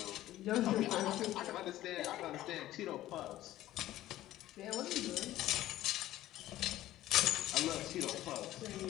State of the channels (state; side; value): quieter; right; 14.6 dB